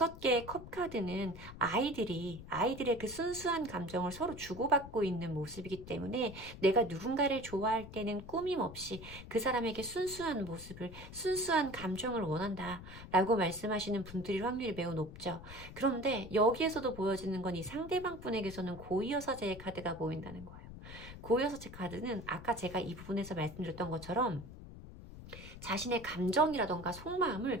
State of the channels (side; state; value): left; noise; rumble, 14 dB below the sound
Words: 컵 카드는 아이들의 그 순수한 감정을 서로 주고받고 있는 모습이기 때문에 내가 누군가를 좋아할 때는 꾸밈 없이 그 사람에게 순수한 모습을, 순수한 감정을 원한다 라고 말씀하시는 분들일 확률이 매우 높죠. 그런데 여기에서도 보여지는 건 이 상대방 분에게서는 고위여사제의 카드가 보인다는 거예요. 고여섯째 카드는 아까 제가 이 부분에서 말씀드렸던 것처럼 자신의 감정이라던가